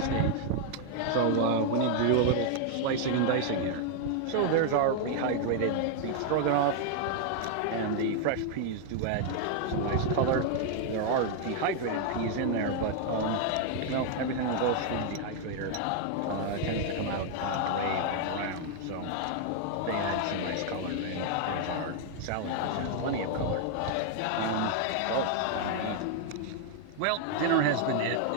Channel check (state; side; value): different; both; correlation 0.00